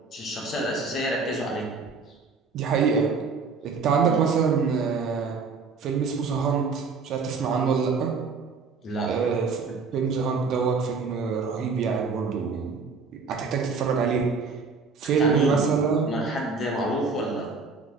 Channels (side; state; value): left; quieter; 4.7 dB